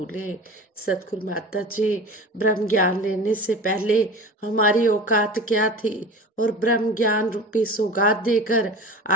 सतगुरु माता जी, ब्रह्म ज्ञान लेने से पहले हमारी औकात क्या थी, और ब्रह्म ज्ञान रूपी सौगात देकर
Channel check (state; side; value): normal; both; correlation 0.35